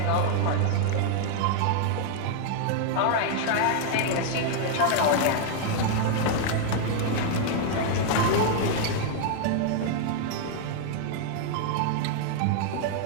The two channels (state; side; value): different; both; correlation 0.00